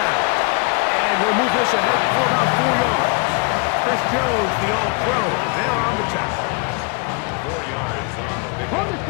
And he'll move this ahead for about 4 yards. Chris Jones, the all-pro, there on the tackle. 4 yards on the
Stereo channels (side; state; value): right; quieter; 32.2 dB